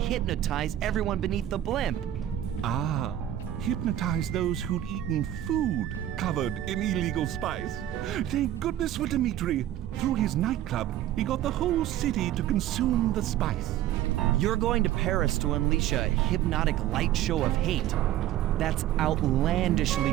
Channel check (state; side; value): quieter; left; 12.6 dB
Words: everyone beneath the blimp. Ah, hypnotize those who'd eaten food covered in illegal spice. Thank goodness for Dimitri. Through his nightclub, he got the whole city to consume the spice. You're going to Paris to unleash a hypnotic light show of hate. That's outlandishly